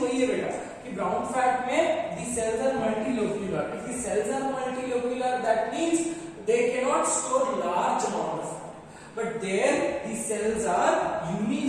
वही है बेटा कि ब्राउन फैट में the cells are multilocular. If the cells are multilocular that means they cannot store large amount of fat, but there the cells are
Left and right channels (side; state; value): both; identical; correlation 1.00